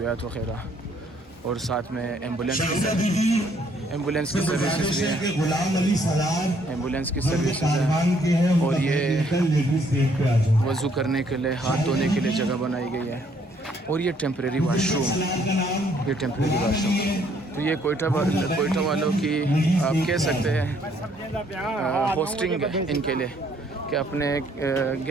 वगैरह, और साथ में एम्बुलेंस की सर्विसेज भी हैं, एम्बुलेंस की सर्विसेज है। और ये वज़ू करने के लिए, हाथ धोने के लिए जगह बनाई गई है। और ये टेम्परेरी वाशरूम, तो ये कोयटा वालों की आप कह सकते हैं होस्टिंग है इनके लिए, कि अपने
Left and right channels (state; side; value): normal; both; correlation 0.66